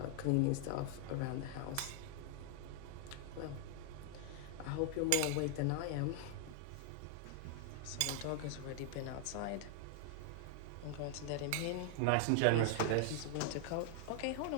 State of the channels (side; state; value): both; different; correlation 0.00